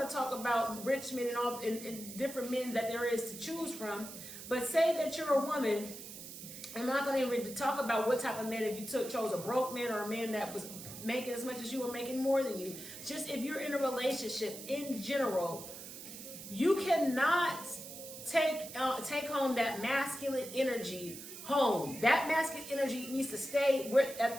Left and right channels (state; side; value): noise; right; hiss, 12 dB below the sound